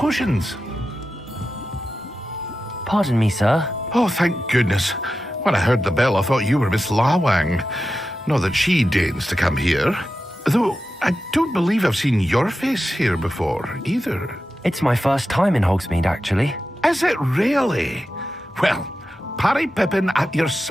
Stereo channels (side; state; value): both; normal; correlation 0.91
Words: Pardon me, sir. Oh, thank goodness. When I heard the bell, I thought you were Miss Lawang. Not that she deigns to come here. Though, I don't believe I've seen your face here before, either. It's my first time in Hogsmeade, actually. Is it really? Well, Parry Pippin at your